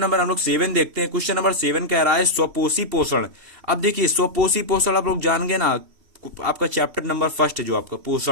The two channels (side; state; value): left; late; 2.7 ms